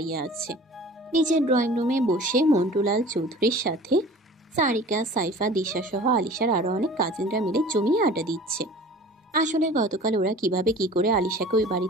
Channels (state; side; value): normal; both; correlation 0.43